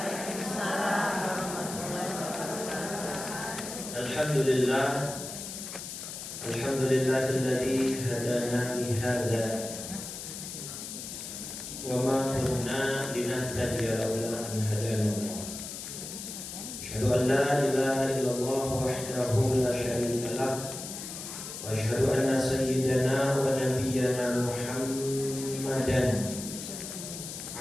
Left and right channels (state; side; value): noise; left; hiss, 8 dB below the sound